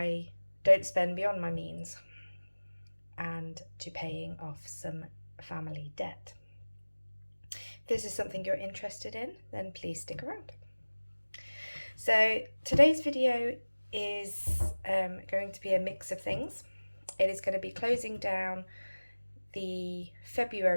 don't spend beyond my means and to paying off some family debt. If this is something you're interested in, then please stick around. So today's video is going to be a mix of things. It is going to be closing down the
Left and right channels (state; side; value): inverted; both; correlation -1.00